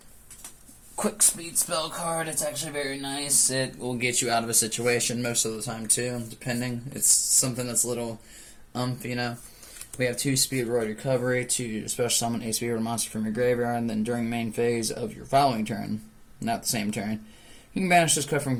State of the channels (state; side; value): identical; both; correlation 1.00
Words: quick speed spell card. It's actually very nice. It will get you out of a situation most of the time too, depending. It's something that's a little you know. We have 2 speedroid recovery to special summon a speedroid monster from your graveyard, and then during main phase of your following turn, not the same turn, you can banish this card from